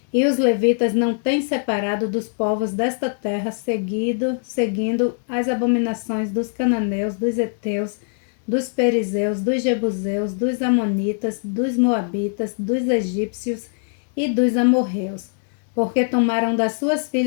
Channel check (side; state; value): right; silent; digital silence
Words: e os levitas não têm separado dos povos desta terra, seguindo as abominações dos cananeus, dos heteus, dos perizeus, dos jebuseus, dos amonitas, dos moabitas, dos egípcios e dos amorreus, porque tomaram das suas